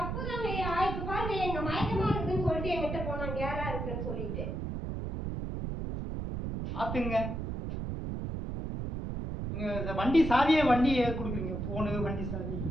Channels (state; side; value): noise; right; rumble, 4 dB below the sound